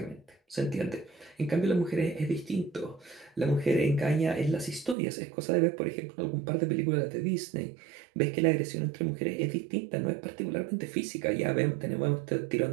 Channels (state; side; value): drops out; left; at 5.0 s